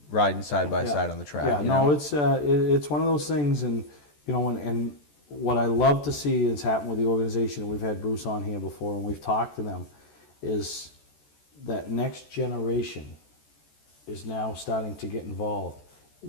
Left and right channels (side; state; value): right; late; 14 ms